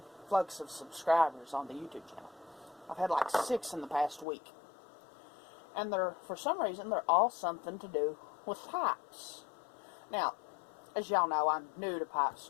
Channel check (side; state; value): right; drops out; at 4.2 s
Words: of subscribers on the YouTube channel. I've had like 6 in the past week. And for some reason, they're all something to do with pipes. Now, as y'all know, I'm new to pipe